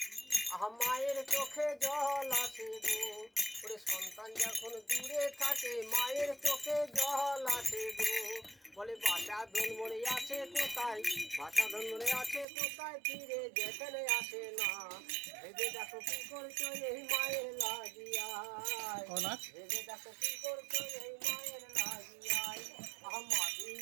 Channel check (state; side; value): drops out; left; at 12.5 s